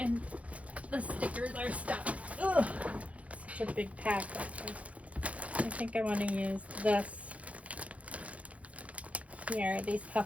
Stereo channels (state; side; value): late; left; 0.065 ms